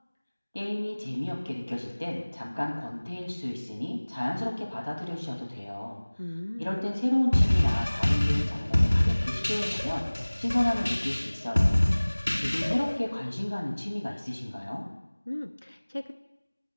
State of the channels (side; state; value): both; inverted; correlation -1.00